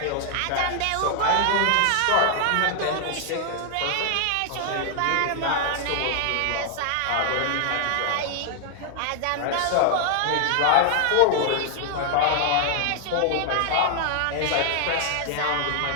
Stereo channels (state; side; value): different; both; correlation 0.00